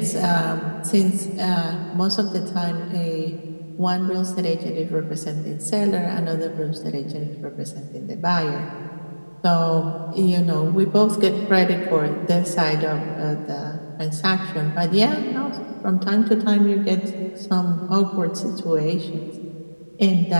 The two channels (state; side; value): inverted; both; correlation -1.00